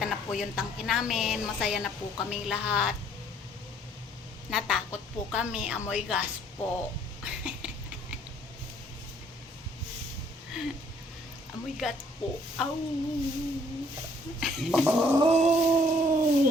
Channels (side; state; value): both; normal; correlation 0.62